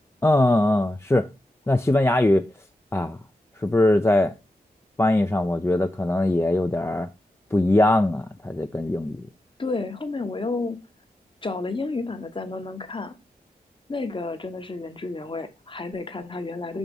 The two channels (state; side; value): normal; both; correlation 0.89